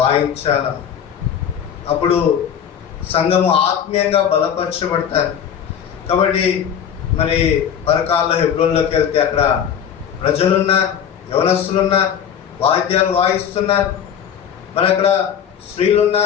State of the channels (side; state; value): right; quieter; 8.6 dB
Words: అప్పుడు సంఘము ఆత్మీయంగా బలపరచబడతారు. కాబట్టి మరి పరకాల్లో హెబ్రోన్లోకి వెళ్తే అక్కడ ప్రజలున్నారు, యవనస్తులున్నారు, వాయిద్యాలు వాయిస్తున్నారు. మరి అక్కడ స్త్రీలు